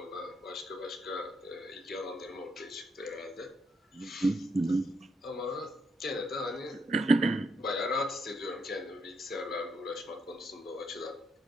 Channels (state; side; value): normal; both; correlation 0.77